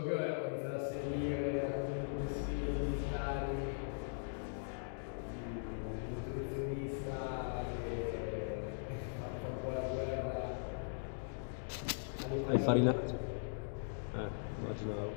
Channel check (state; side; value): silent; right; digital silence